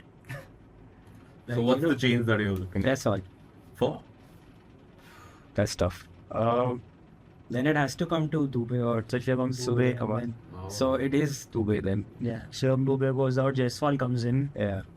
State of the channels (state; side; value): identical; both; correlation 1.00